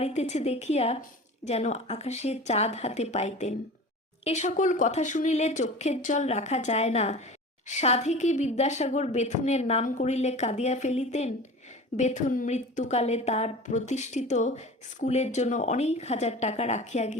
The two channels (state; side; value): normal; both; correlation 0.36